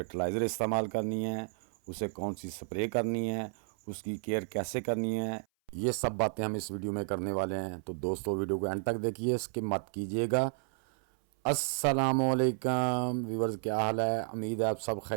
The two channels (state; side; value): silent; left; 56 dB below the other